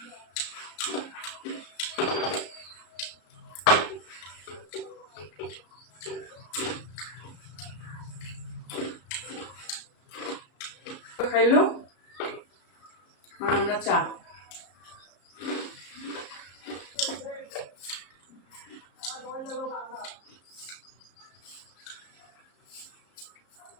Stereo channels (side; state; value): right; late; 34 ms